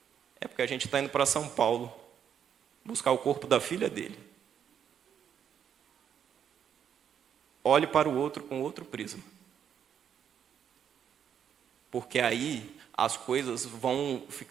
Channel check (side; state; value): left; quieter; 8.6 dB